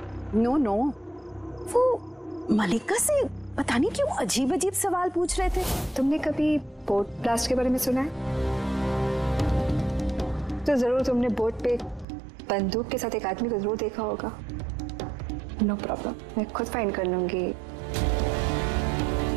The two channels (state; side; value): drops out; left; at 12.1 s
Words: नो, वो मल्लिका से पता नहीं क्यों अजीब सवाल पूछ रहे थे। तुमने कभी बोट ब्लास्ट के बारे में सुना है? तो जरूर तुमने बोट पे बंदूक के साथ एक आदमी को जरूर देखा होगा। नो प्रॉब्लम, मैं खुद फाइंड कर लूंगी।